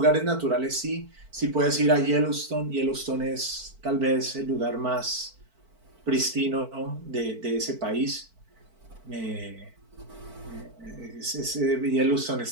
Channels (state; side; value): late; left; 4.5 ms